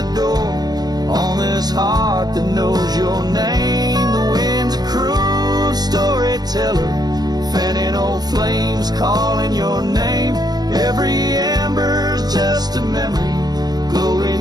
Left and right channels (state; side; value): late; left; 0.19 ms